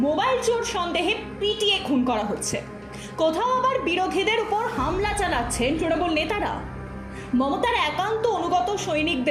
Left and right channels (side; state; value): both; identical; correlation 1.00